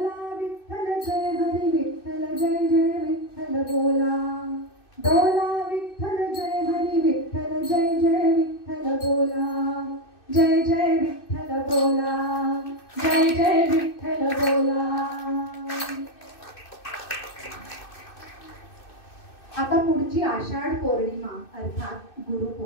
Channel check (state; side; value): late; right; 2.6 ms